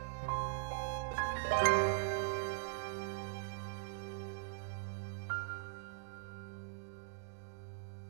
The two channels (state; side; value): silent; left; digital silence